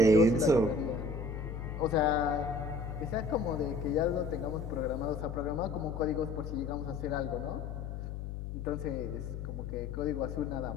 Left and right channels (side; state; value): left; noise; hum, 6 dB below the sound